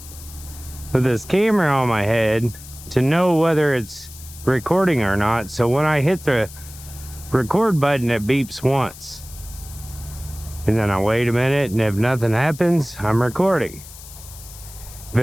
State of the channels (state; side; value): noise; left; hiss, 17 dB below the sound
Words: with this camera on my head, to know whether it's recording or not, so when I hit the record button, it beeps once. And then I wait a minute, and if nothing happens, I'm recording. If